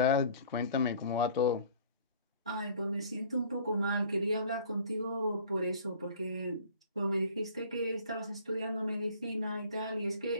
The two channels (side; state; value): both; inverted; correlation -0.50